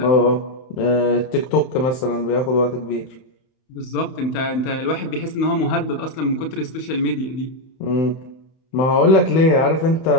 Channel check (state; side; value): late; right; 31 ms